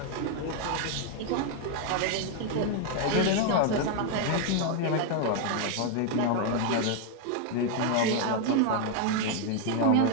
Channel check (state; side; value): different; both; correlation 0.00